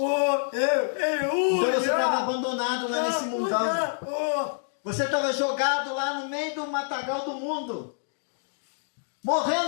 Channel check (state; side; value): silent; right; digital silence